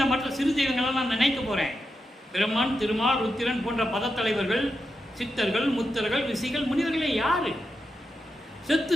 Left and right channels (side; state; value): both; normal; correlation 0.87